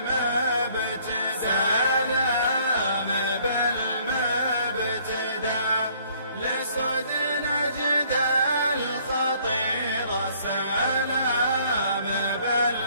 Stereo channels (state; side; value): inverted; both; correlation -0.61